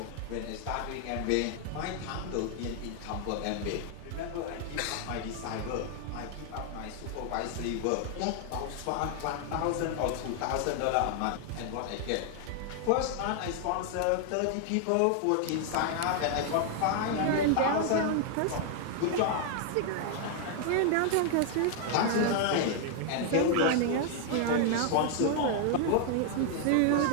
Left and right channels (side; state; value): both; different; correlation 0.00